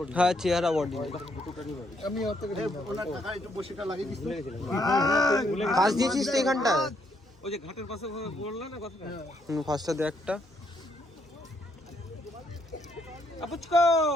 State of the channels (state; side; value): normal; both; correlation 0.73